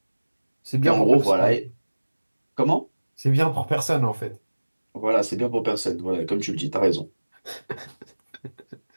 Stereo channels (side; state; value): both; inverted; correlation -1.00